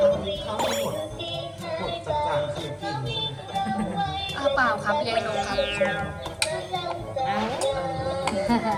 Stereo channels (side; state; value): both; identical; correlation 1.00